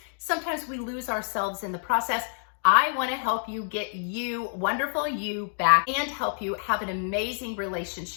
Sometimes we lose ourselves in the process. I want to help you get you, wonderful you, back and help you have an amazing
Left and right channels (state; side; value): silent; right; digital silence